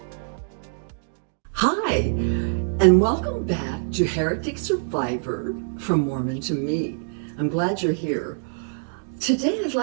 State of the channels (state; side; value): silent; left; digital silence